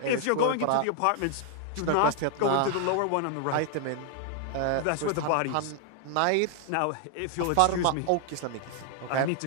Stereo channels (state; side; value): different; both; correlation 0.00